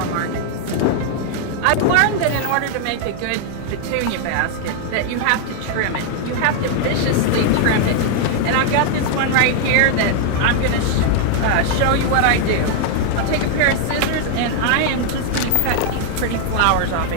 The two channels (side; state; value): both; different; correlation 0.00